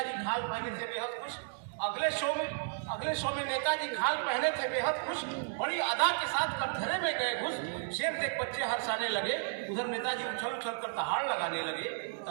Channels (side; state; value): left; silent; digital silence